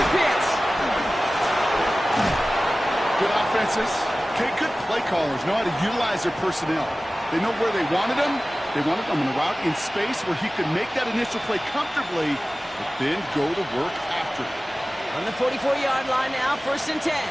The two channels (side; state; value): both; normal; correlation 0.97